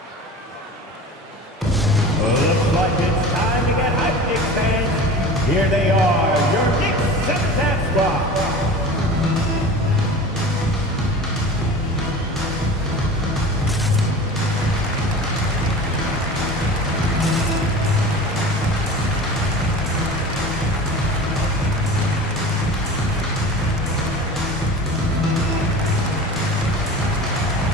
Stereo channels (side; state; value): both; normal; correlation 0.36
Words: Looks like it's time to get hyped, Knicks fans. Here they are, your Knicks set spot.